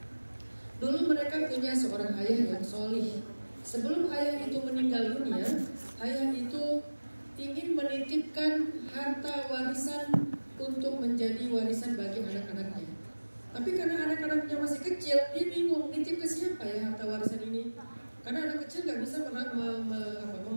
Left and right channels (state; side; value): inverted; both; correlation -1.00